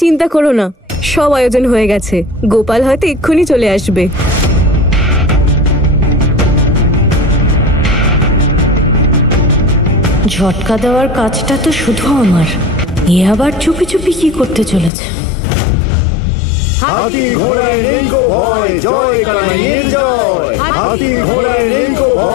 চিন্তা করো না, সব আয়োজন হয়ে গেছে। গোপাল হয়তো এক্ষুনি চলে আসবে। ঝটকা দেওয়ার কাজটা তো শুধু আমার, এ আবার চুপি চুপি কি করতে চলেছে? হাতি ঘোড়ায় নেই গো ভয়, জয় কানাইয়ের জয়। হাতি ঘোড়ায় নেই গো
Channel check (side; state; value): right; drops out; at 14.9 s